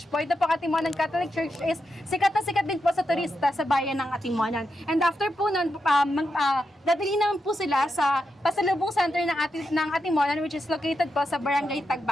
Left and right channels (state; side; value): normal; both; correlation 0.86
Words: po. Ito po Atimonan Catholic Church is sikat na sikat din po sa turista sa bayan ng Atimonan. And after po nun, dadali naman po sila sa pasalubong center ng Atimonan, which is located po sa Barangay